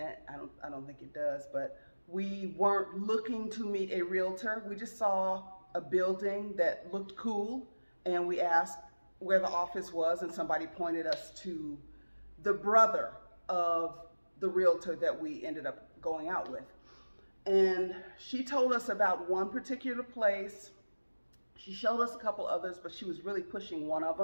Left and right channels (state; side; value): inverted; both; correlation -1.00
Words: I don't think it does, but we weren't looking to meet a realtor. We just saw a building that looked cool, and we asked where the office was, and somebody pointed us to the brother of the realtor that we ended up going out with. And she told us about one particular place. She showed us a couple others, but she was really pushing one of